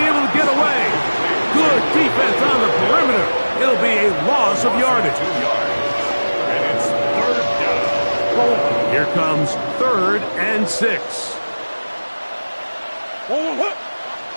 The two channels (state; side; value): inverted; both; correlation -1.00